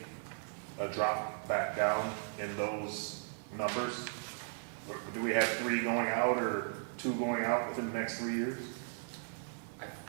a drop back down in those numbers? Or do we have 3 going out or 2 going out within the next 3 years? I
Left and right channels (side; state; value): left; silent; digital silence